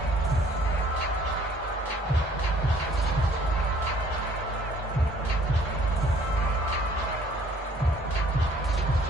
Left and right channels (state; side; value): normal; both; correlation 0.58